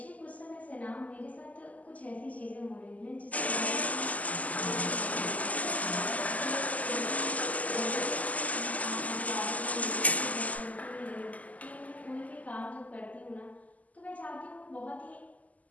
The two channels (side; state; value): right; late; 0.075 ms